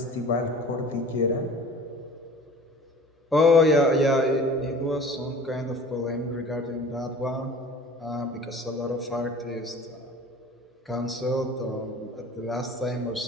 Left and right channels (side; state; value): both; normal; correlation 0.43